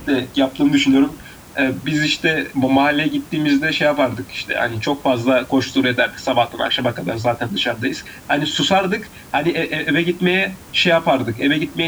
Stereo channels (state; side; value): identical; both; correlation 1.00